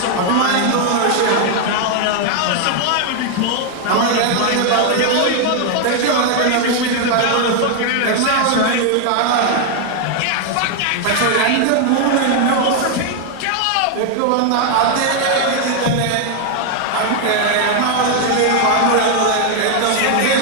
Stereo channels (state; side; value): different; both; correlation 0.00